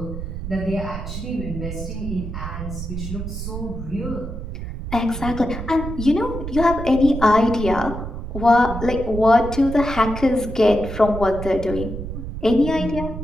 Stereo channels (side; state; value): right; noise; rumble, 7 dB below the sound